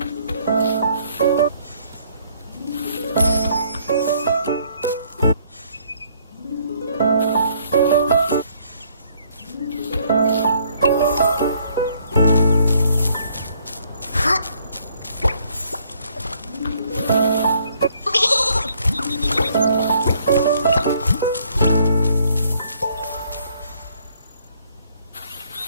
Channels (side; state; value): both; inverted; correlation -0.66